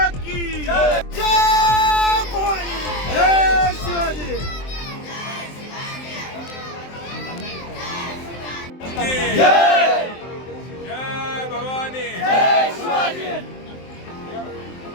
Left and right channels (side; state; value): right; late; 23 ms